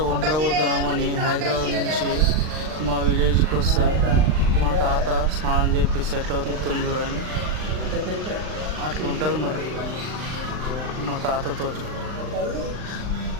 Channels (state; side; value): late; left; 39 ms